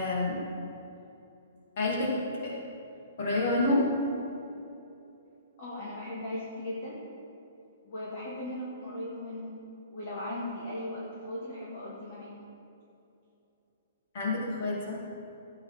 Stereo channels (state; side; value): inverted; both; correlation -0.51